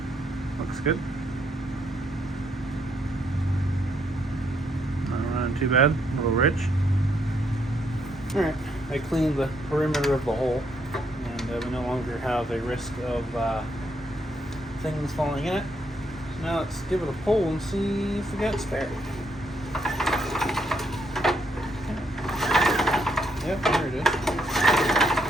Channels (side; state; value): both; normal; correlation 0.74